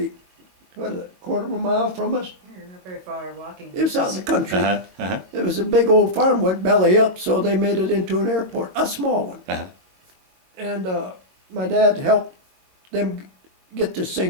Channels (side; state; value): left; late; 22 ms